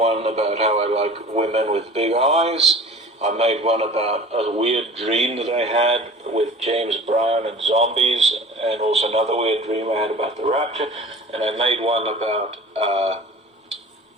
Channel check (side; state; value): both; normal; correlation 0.42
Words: about how I like women with big eyes. I made one about a weird dream that I had with James Brown and zombies, and also another weird dream I had about the rapture. And I made one about